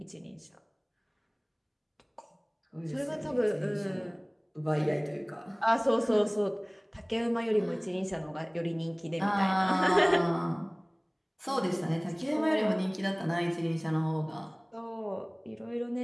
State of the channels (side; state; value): both; identical; correlation 1.00